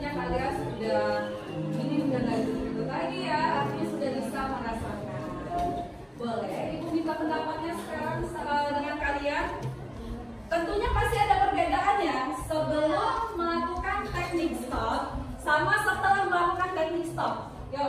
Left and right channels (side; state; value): both; identical; correlation 1.00